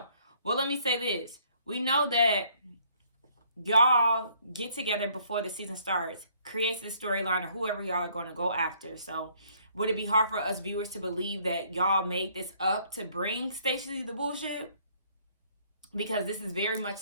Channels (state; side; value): inverted; both; correlation -0.64